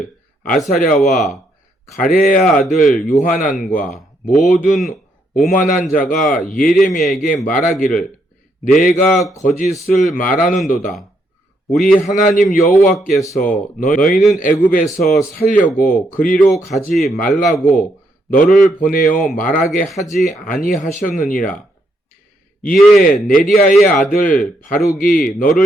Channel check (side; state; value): both; normal; correlation 0.76